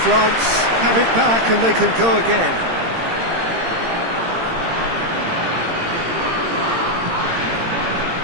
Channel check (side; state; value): left; late; 18 ms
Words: France have it back and they can go again.